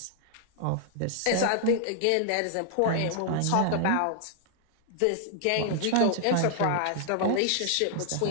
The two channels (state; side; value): different; both; correlation -0.01